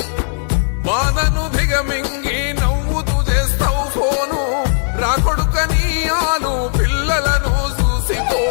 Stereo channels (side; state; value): right; silent; 65 dB below the other